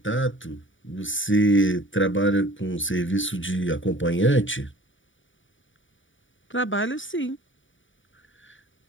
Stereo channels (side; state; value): right; late; 0.56 ms